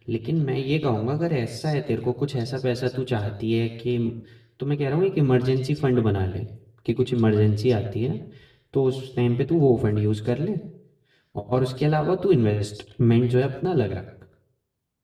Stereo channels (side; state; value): both; identical; correlation 1.00